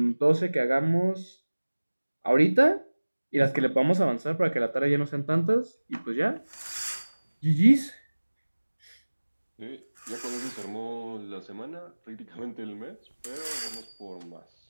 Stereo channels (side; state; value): both; inverted; correlation -1.00